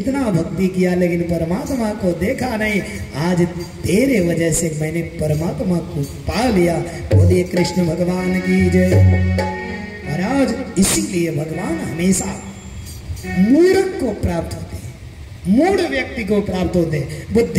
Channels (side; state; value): both; identical; correlation 1.00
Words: भक्ति किया लेकिन परमात्मा को देखा नहीं, आज तेरे वजह से मैंने परमात्मा को पा लिया। बोलिए कृष्ण भगवान की जय। महाराज इसीलिए भगवान हमेशा मूर्ख को प्राप्त होते हैं, मूढ़ व्यक्ति को प्राप्त होते हैं।